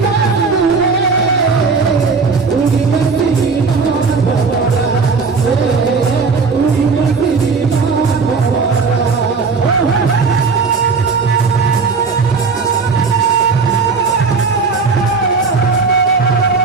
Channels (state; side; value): quieter; left; 4.7 dB